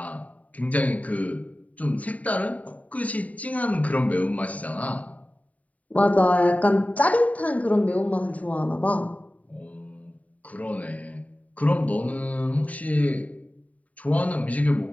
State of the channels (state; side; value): late; right; 0.070 ms